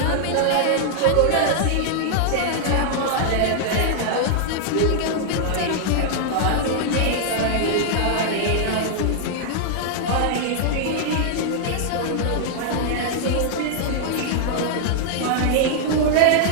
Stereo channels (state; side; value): different; both; correlation -0.01